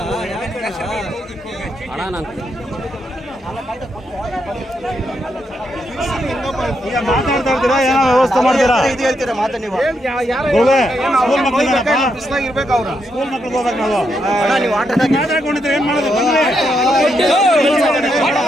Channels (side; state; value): both; normal; correlation 0.80